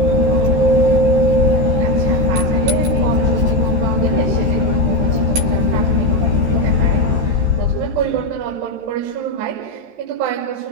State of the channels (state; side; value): late; left; 13 ms